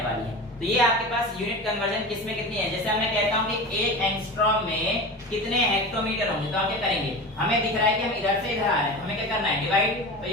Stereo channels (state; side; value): normal; both; correlation 0.30